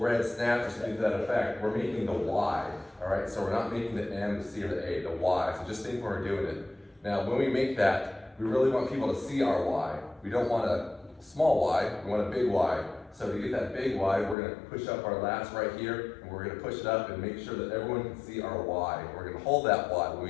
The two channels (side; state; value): right; drops out; at 14.4 s